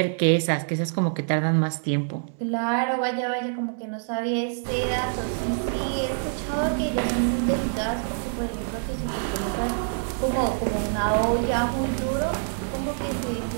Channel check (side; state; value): left; silent; 61 dB below the other